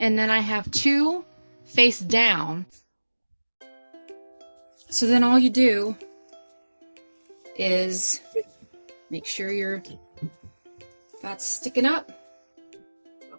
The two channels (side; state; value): both; inverted; correlation -1.00